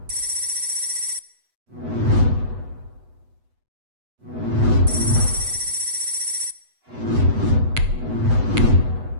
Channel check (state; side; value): late; left; 8.1 ms